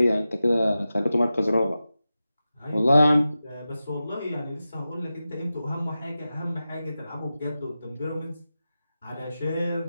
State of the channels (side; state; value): both; inverted; correlation -0.93